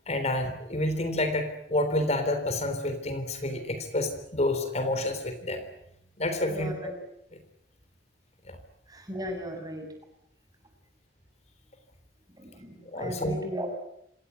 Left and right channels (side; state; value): both; normal; correlation 0.30